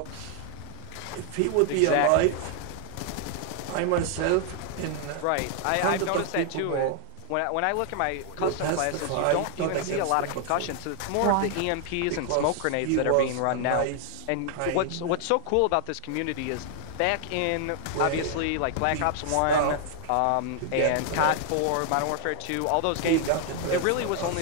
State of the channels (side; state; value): both; different; correlation 0.00